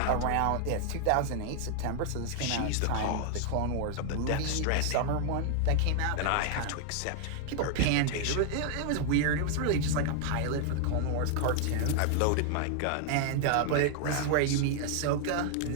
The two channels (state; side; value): different; both; correlation 0.00